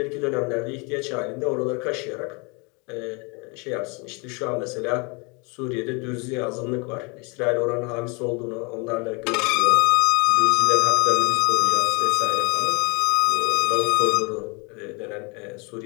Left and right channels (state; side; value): quieter; right; 30.8 dB